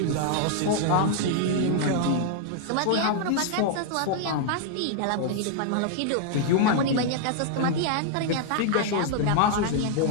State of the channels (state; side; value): different; both; correlation 0.00